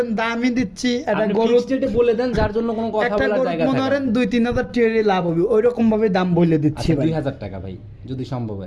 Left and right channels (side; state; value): both; identical; correlation 1.00